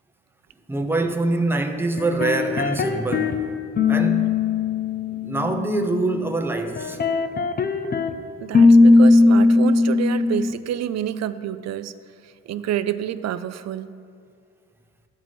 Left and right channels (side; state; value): both; normal; correlation 0.79